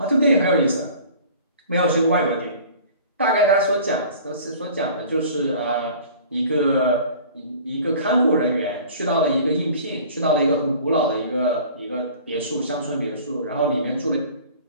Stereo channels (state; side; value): inverted; both; correlation -0.45